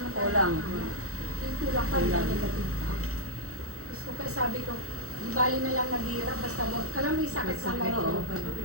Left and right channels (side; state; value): left; late; 0.64 ms